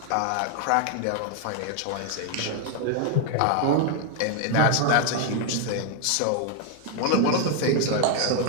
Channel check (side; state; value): both; different; correlation 0.00